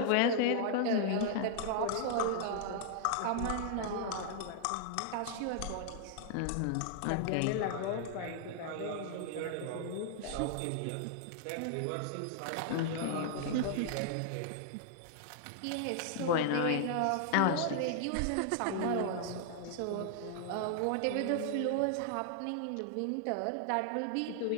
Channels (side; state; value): both; different; correlation -0.01